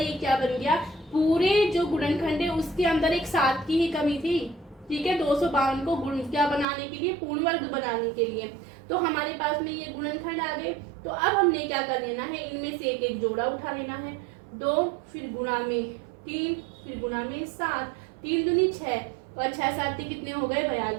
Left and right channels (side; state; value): left; drops out; at 6.7 s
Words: क्या बन गया, पूरे जो गुणनखंड है उसके अंदर एक 7 की ही कमी थी। ठीक है, 252 को गुण क्या बनाने के लिए, पूर्ण वर्ग बनाने के लिए। तो हमारे पास में ये गुणनखंड आ गए। तो अब हमने क्या कर लेना है, इनमें से एक एक जोड़ा उठा लेना है, 2 फिर गुणा में 3 फिर गुणा में 7, 3 दूनी 6 और 6 7 कितने हो गए,